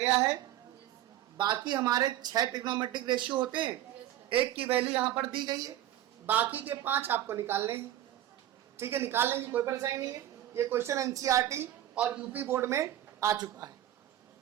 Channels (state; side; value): quieter; left; 12.7 dB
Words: है। बाकी हमारे 6 ट्रिग्नोमेट्रिक रेशियो होते हैं, एक की वैल्यू यहाँ पर दी गई है, बाकी के 5 आपको निकालने हैं। ठीक है, निकाल लेंगे, कोई परेशानी नहीं है। ये क्वेश्चन एनसीईआरटी और यूपी बोर्ड में आ चुका है,